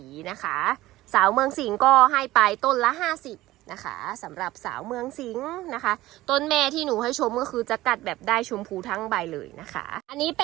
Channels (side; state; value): left; quieter; 16.8 dB